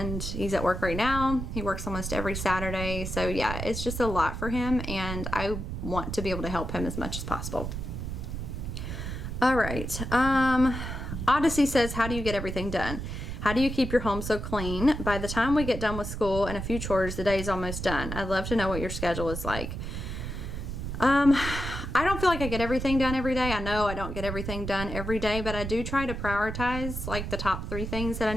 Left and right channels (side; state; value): right; noise; rumble, 5 dB below the sound